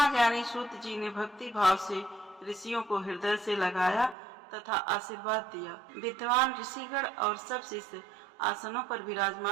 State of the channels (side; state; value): left; drops out; at 4.2 s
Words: सूत जी ने भक्ति भाव से ऋषियों को हृदय से लगाया तथा आशीर्वाद दिया। विद्वान ऋषिगण और सब शिष्य आसनों पर